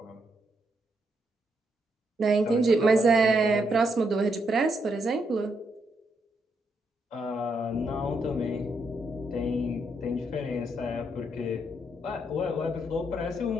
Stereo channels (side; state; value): both; normal; correlation 0.78